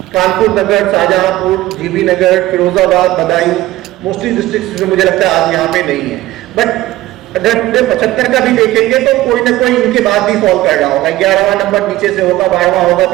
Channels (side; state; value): left; quieter; 16.3 dB